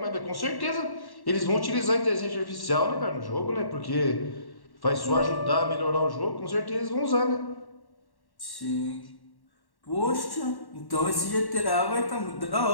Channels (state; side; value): late; right; 1.1 ms